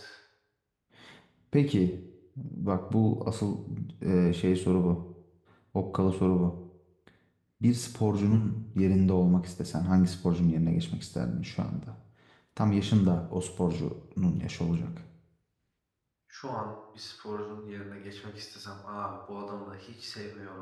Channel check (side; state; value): both; identical; correlation 1.00